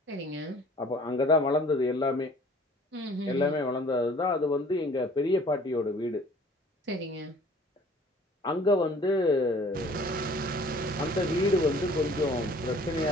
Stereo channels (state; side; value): normal; both; correlation 0.52